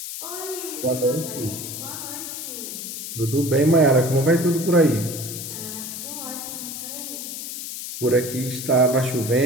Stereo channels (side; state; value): left; noise; hiss, 7 dB below the sound